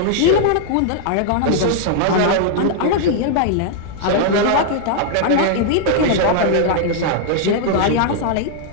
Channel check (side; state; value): both; different; correlation -0.01